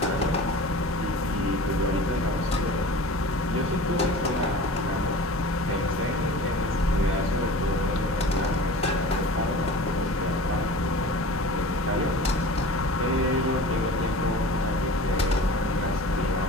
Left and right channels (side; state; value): both; normal; correlation 0.38